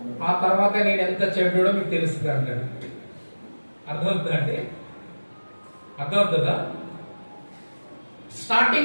ఆ తర్వాత నేను ఎంత చెడ్డోడో మీకు తెలుస్తుంది అంటాడు. అర్థమవుతుందండి? అర్థమవుతుందా?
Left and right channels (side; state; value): both; inverted; correlation -1.00